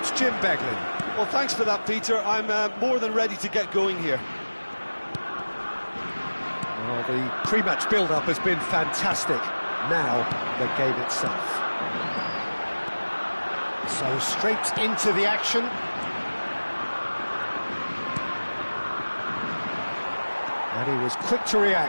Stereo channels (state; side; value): inverted; both; correlation -1.00